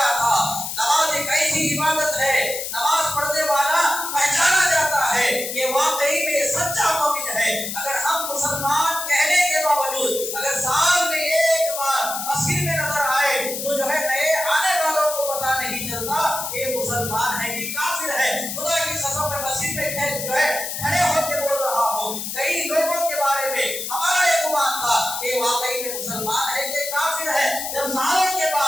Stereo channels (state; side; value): noise; left; hiss, 5 dB below the sound